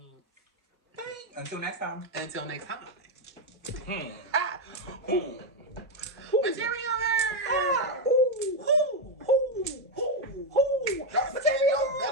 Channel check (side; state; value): both; normal; correlation 0.04